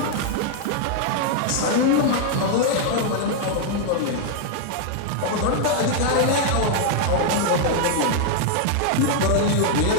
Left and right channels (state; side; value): different; both; correlation 0.00